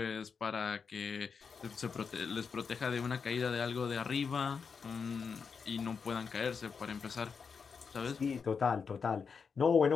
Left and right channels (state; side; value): quieter; right; 5.8 dB